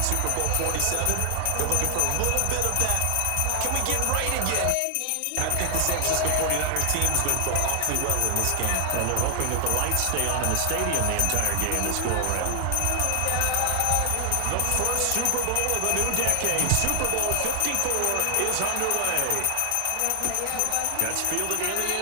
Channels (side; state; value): both; different; correlation 0.00